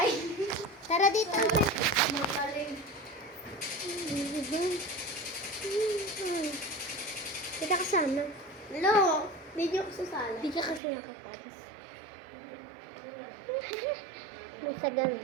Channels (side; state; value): left; drops out; at 10.8 s